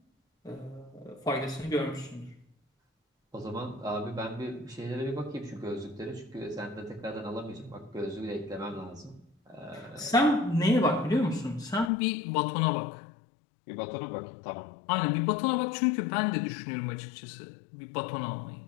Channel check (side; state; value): right; drops out; at 11.9 s